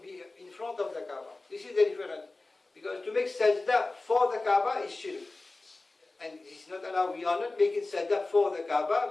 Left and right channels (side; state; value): right; quieter; 3.2 dB